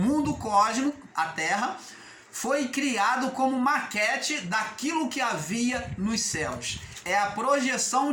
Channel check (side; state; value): both; identical; correlation 1.00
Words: cósmico, a terra, foi criado como maquete daquilo que havia nos céus. É a projeção